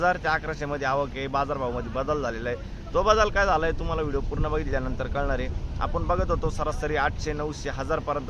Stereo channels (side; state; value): both; identical; correlation 1.00